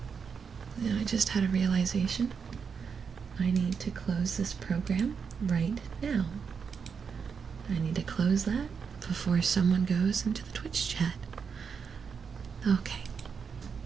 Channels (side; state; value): left; quieter; 6.1 dB